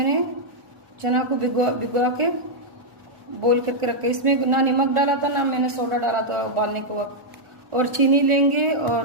चना को भिगो के बॉईल करके रखा। इसमें ना नमक डाला था ना मैंने सोडा डाला था उबालने के वक्त। और चीनी लेंगे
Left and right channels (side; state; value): left; late; 1.4 ms